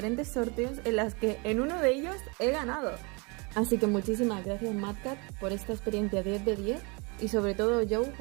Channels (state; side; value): quieter; left; 30.3 dB